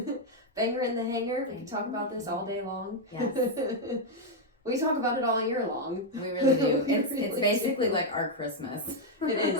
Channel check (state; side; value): normal; both; correlation 0.00